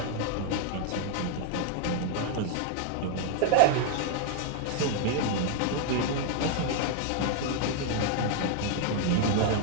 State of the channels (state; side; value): different; both; correlation 0.00